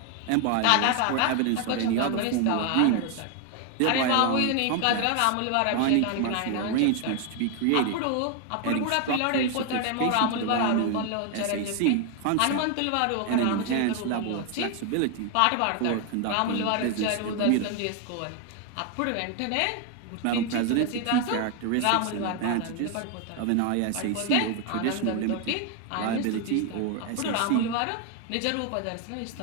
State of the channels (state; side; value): different; both; correlation 0.01